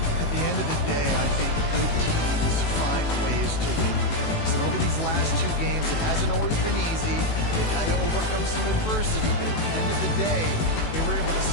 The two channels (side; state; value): right; late; 18 ms